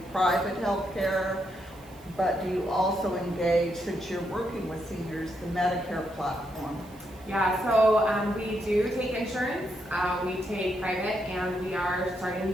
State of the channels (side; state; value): right; noise; hiss, 26 dB below the sound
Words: private health care, but do you also engage, since you're working with seniors, the Medicare platform? Yeah, so we do take insurance, we take private, and we are starting